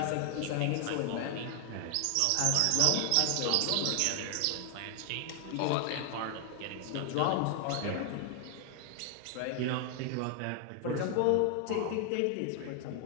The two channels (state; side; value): different; both; correlation 0.00